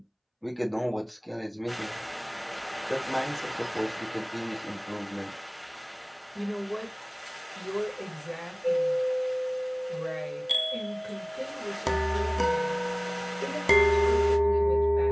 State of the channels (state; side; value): identical; both; correlation 1.00